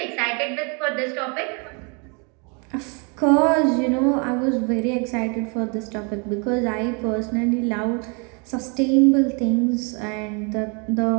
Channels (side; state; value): left; quieter; 34.4 dB